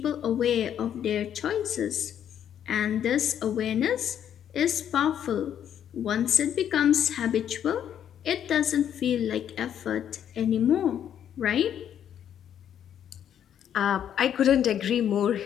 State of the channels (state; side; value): quieter; right; 9.6 dB